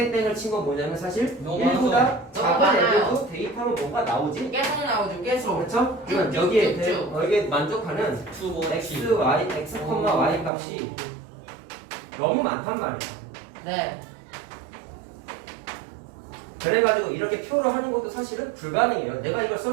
친 건 뭐냐면 사실 너무 1보다 너무 작은 많아요. 애들도 대입하면 뭐가 나오지? 계속 나오죠. 계속. 그렇죠? 그러면 여기에 여기에 만족하는 x, y, x, y 값이 너무 많단 말이야. 네. 그래가지고 이렇게 표로 하는 것도 사실은 불가능해요. 내가 이걸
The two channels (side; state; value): left; drops out; at 10.5 s